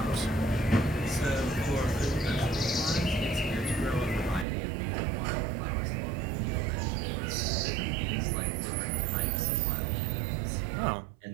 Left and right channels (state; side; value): drops out; left; at 4.5 s